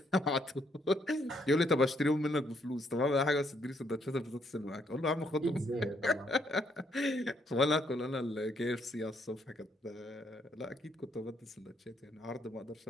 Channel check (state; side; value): normal; both; correlation 0.72